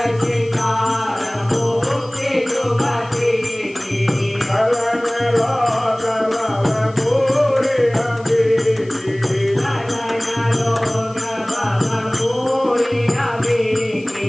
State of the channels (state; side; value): noise; left; hiss, 26 dB below the sound